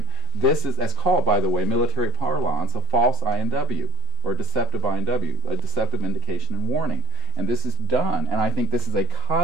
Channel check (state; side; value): normal; both; correlation 0.20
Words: This is, as called, by the way, military parlance, a false INW, or a deceptive INW, a deceptive indication and warning. And this is done, and I think this is a